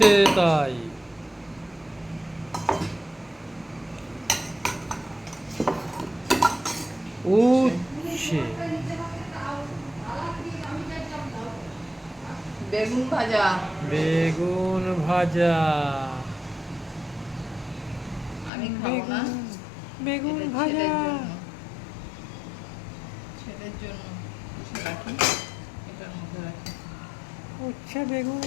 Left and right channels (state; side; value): drops out; right; at 18.5 s